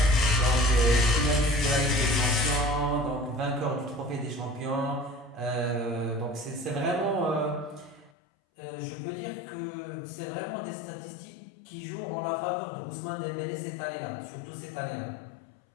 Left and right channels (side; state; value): right; drops out; at 8.1 s